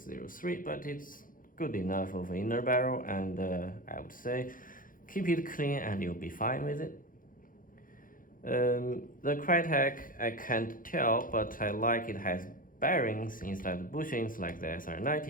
but it's good enough of an inner barrel, and I would say keep it clean and you'll be fine with it. The Krytac, I can't tell, but I like it has bearings instead of bushings like the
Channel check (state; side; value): late; right; 0.40 ms